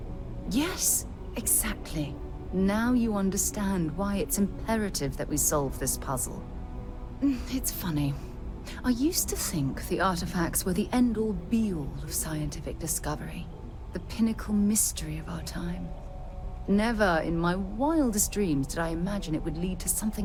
Yes, exactly. Now you understand why it's imperative that we solve this puzzle. It's funny. I used to think the artifacts were the end-all be-all of scientific discovery, the pinnacle mystery of our time. Never in my wildest dreams did I imagine it would lead to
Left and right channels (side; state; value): both; identical; correlation 1.00